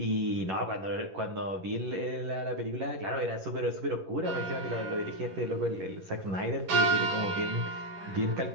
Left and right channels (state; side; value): late; left; 11 ms